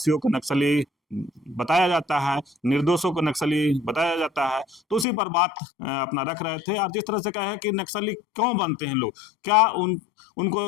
को नक्सली बताया जाता है, निर्दोषों को नक्सली बताया जाता है, तो उसी पर बात अपना रख रहे थे। और जिस तरह से कहे कि नक्सली क्यों बनते हैं लोग, क्या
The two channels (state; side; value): drops out; right; at 5.1 s